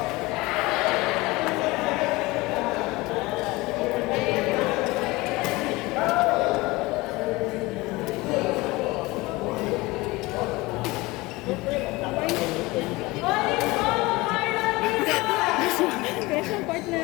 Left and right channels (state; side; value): quieter; right; 21.8 dB